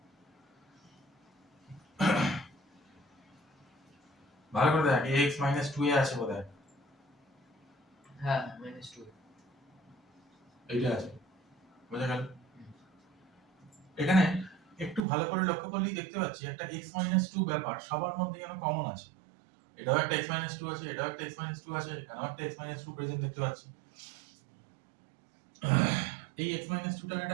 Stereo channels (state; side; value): drops out; left; at 15.0 s